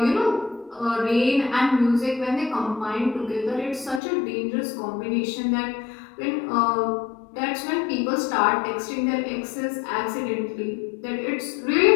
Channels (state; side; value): drops out; right; at 4.0 s